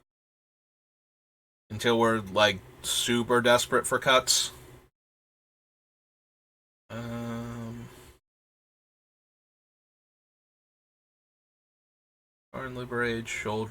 Until we're, super desperate for cuts. Arn Braids,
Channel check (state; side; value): identical; both; correlation 1.00